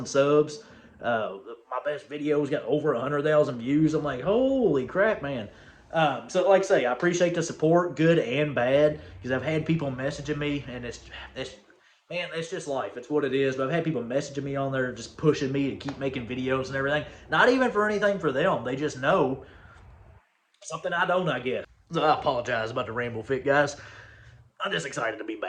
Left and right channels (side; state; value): both; identical; correlation 1.00